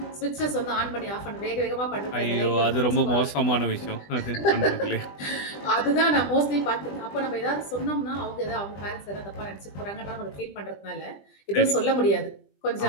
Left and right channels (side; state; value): right; late; 20 ms